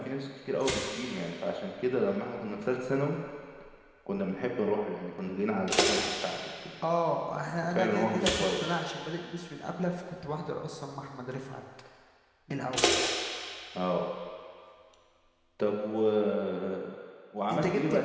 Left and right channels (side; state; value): both; identical; correlation 1.00